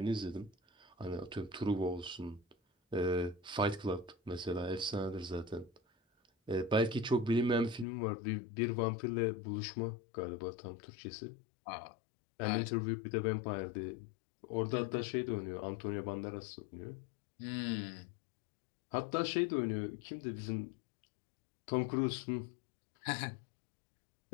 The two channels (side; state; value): right; drops out; at 7.9 s